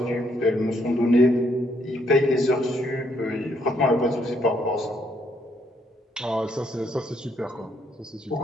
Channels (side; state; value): both; normal; correlation 0.71